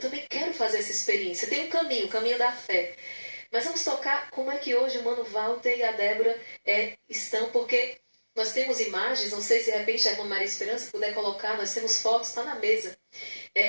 quero fazer essa experiência. Tem um caminho, o caminho da fé. Mas vamos tocar como é que hoje o Mano Walter e a Débora estão, porque nós temos imagens, não sei se de repente a irmã Maria Esperança puder colocar, nós temos fotos, está na mesa.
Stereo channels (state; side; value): inverted; both; correlation -1.00